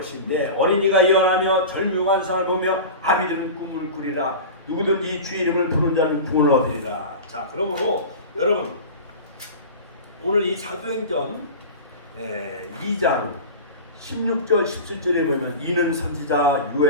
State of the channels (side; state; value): both; inverted; correlation -0.31